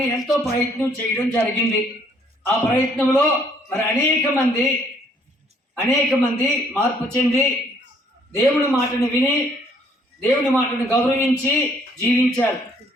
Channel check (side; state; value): both; normal; correlation 0.64